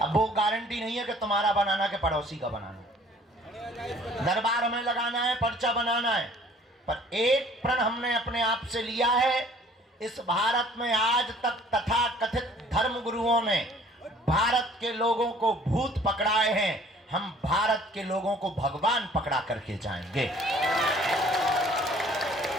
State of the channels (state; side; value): normal; both; correlation 0.54